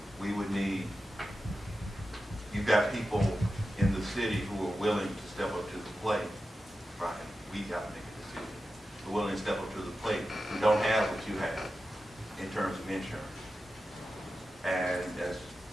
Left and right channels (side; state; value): both; normal; correlation 0.92